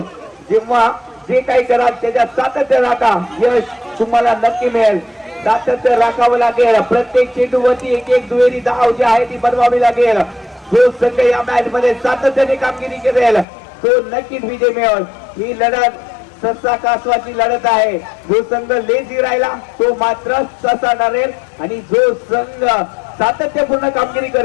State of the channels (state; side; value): drops out; right; at 13.5 s